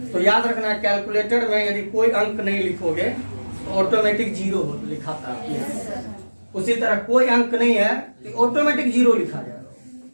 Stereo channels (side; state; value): both; inverted; correlation -1.00